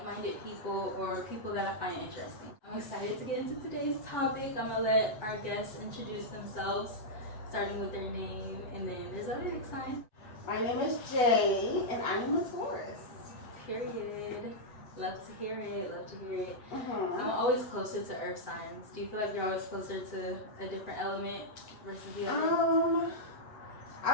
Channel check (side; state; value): right; late; 8.0 ms